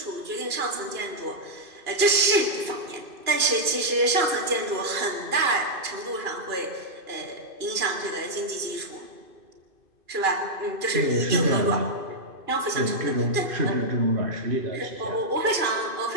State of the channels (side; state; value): left; late; 2.5 ms